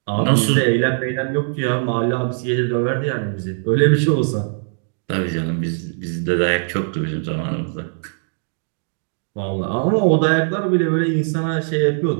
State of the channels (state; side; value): silent; left; digital silence